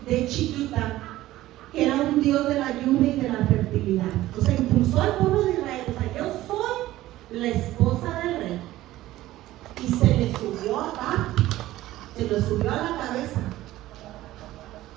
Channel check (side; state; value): left; quieter; 15.7 dB